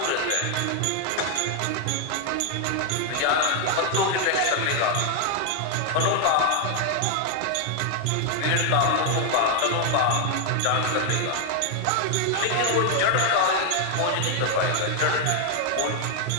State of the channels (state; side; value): different; both; correlation 0.00